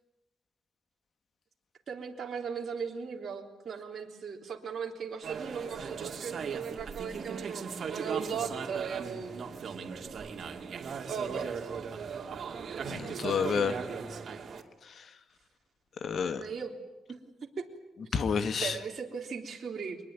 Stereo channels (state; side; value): normal; both; correlation 0.71